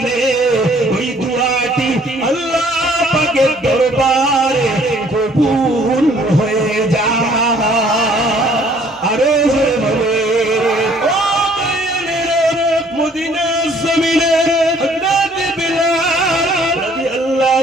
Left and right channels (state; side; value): normal; both; correlation 0.59